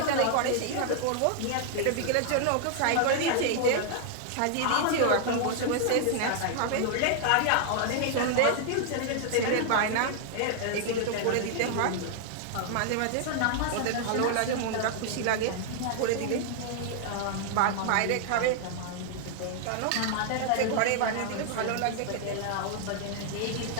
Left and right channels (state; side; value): different; both; correlation -0.01